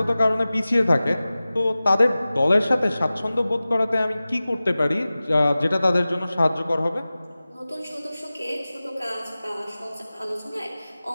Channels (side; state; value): both; inverted; correlation -0.97